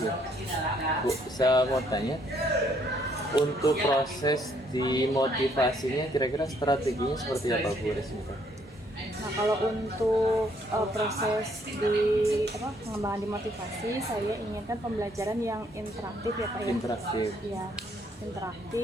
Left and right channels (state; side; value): normal; both; correlation 0.68